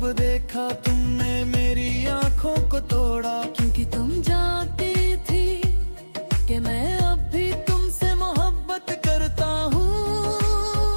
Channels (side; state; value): both; inverted; correlation -1.00